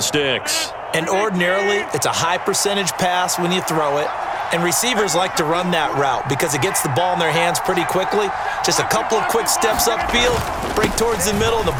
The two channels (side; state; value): both; identical; correlation 1.00